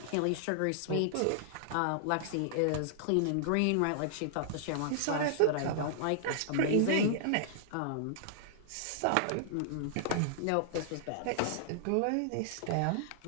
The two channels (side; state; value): both; different; correlation -0.01